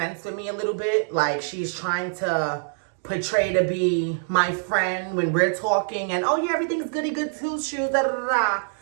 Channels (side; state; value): left; silent; digital silence